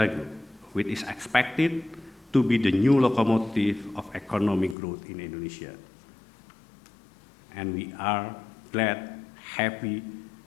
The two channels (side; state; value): right; drops out; at 4.8 s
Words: which is expected to be the new locomotive of economic growth in Indonesia. And we are glad, happy